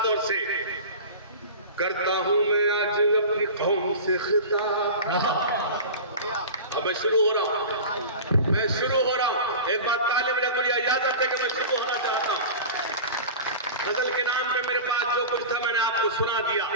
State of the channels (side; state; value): both; inverted; correlation -0.33